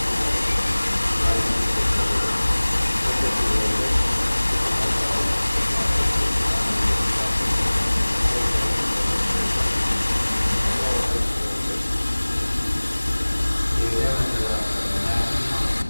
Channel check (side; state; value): both; inverted; correlation -1.00